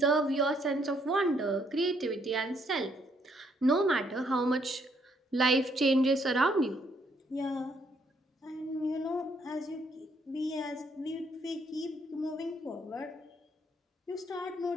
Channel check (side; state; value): both; normal; correlation 0.70